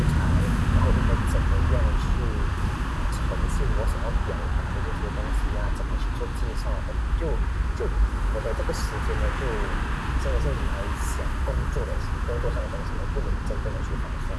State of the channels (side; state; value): both; identical; correlation 1.00